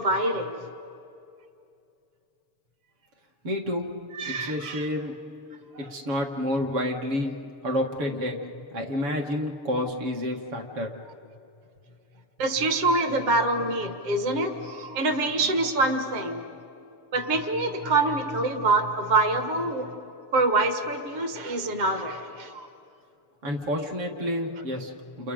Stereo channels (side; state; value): left; late; 7.0 ms